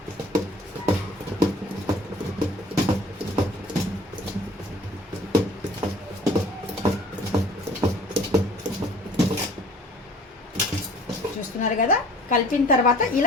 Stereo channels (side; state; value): both; normal; correlation 0.50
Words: చూస్తున్నారు కదా, కలిపిన తర్వాత